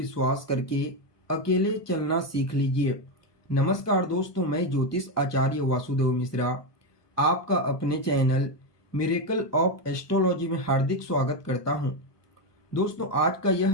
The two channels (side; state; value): right; late; 1.3 ms